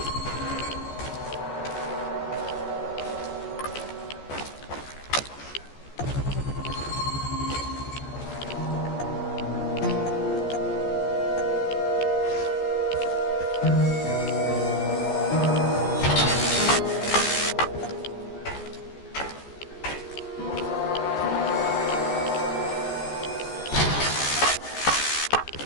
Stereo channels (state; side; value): late; right; 14 ms